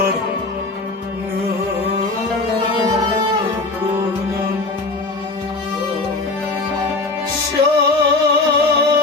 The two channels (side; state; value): right; quieter; 3.4 dB